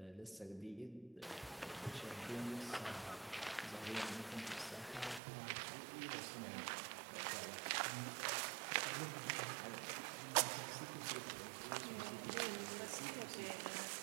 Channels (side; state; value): left; drops out; at 5.2 s